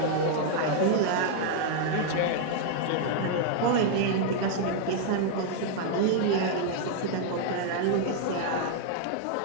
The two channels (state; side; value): different; both; correlation 0.00